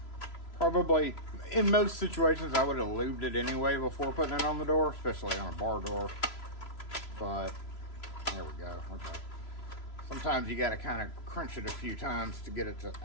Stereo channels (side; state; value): right; late; 3.0 ms